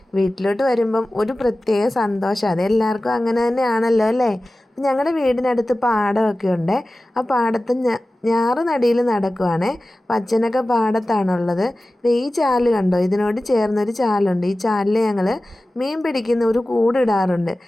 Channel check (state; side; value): normal; both; correlation 0.96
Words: വീട്ടിലോട്ട് വരുമ്പം ഒരു പ്രത്യേക സന്തോഷം. അതെല്ലാവർക്കും അങ്ങനെ തന്നെയാണല്ലോ അല്ലേ. ഞങ്ങളുടെ വീടിനടുത്ത് പാടമൊക്കെ ഉണ്ട്. ആ പാടത്ത് ഞാറ് നടിയിൽ നടക്കുവാണ്. അച്ഛനൊക്കെ പാടത്താണുള്ളത്. ഈ ചാല് കണ്ടോ, ഇതിനോട് ചേർന്നൊരു ചാലുണ്ട്. ഈ ചാലിൽ ഞങ്ങൾ മീൻ പിടിക്കുന്ന ഒരു കൂടിടാറുണ്ട്.